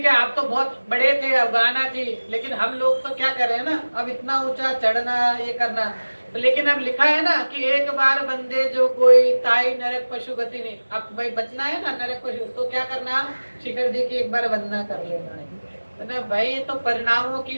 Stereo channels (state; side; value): inverted; both; correlation -1.00